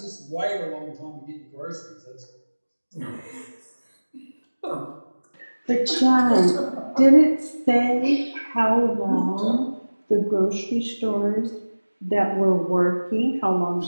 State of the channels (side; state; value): both; inverted; correlation -1.00